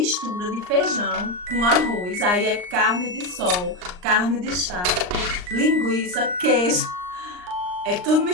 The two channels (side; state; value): left; late; 39 ms